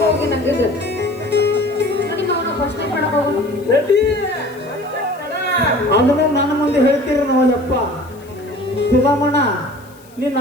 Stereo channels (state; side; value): noise; left; hiss, 27 dB below the sound